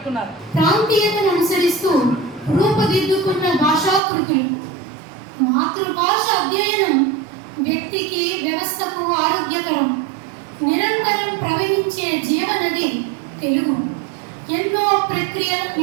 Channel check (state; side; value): drops out; left; at 4.0 s